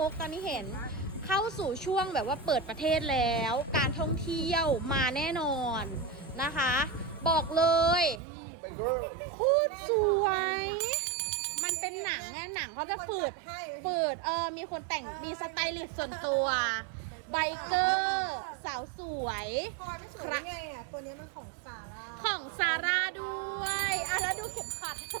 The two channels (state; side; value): drops out; left; at 8.2 s